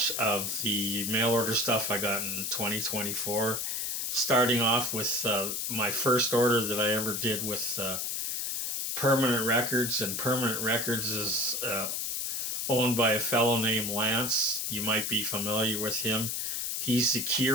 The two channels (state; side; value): noise; left; hiss, 1 dB below the sound